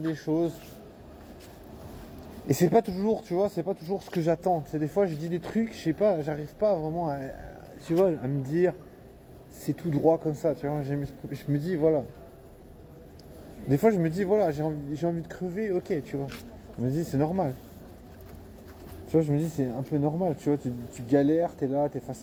choses. Et c'est pas toujours, tu vois, c'est pas toujours ce que j'attends. C'est des fois, je dis des trucs, je sais pas, j'arrive pas vraiment à, tu vois, à me dire, c'est tout droit comme ça, tu vois. Je me dis, voilà. Des fois, je me dis, voilà, j'ai envie de crever, ok, tu vois. Je me dis, c'est normal. Tu vois, je me dis, c'est un peu normal, tu vois, tu galères, t'es là, t'es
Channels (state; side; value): identical; both; correlation 1.00